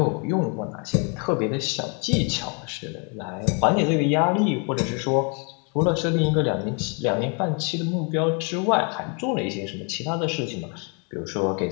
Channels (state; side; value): quieter; right; 35.6 dB